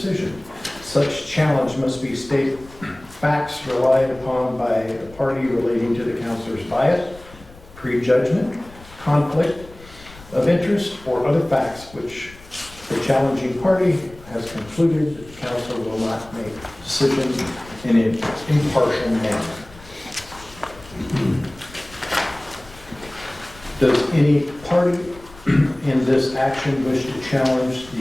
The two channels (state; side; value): noise; left; rumble, 21 dB below the sound